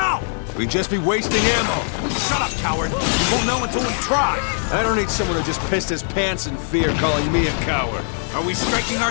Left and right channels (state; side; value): silent; right; digital silence